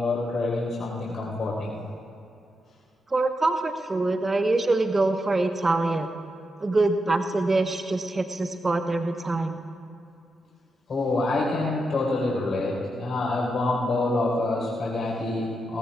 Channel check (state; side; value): normal; both; correlation 0.85